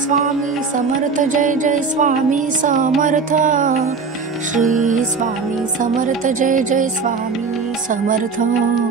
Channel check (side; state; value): left; quieter; 5.0 dB